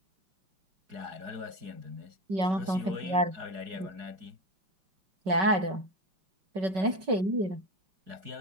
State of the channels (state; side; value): late; left; 5.3 ms